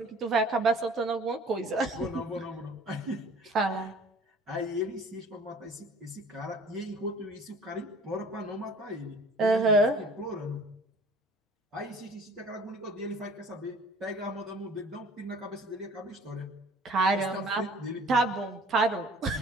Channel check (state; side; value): normal; both; correlation 0.49